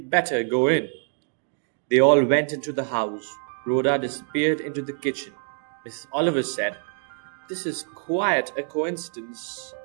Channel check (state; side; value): silent; left; 61 dB below the other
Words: better go in. They all went into the house. Rhoda disappeared into the kitchen. Mrs. Oliver said, This is quite a coincidence,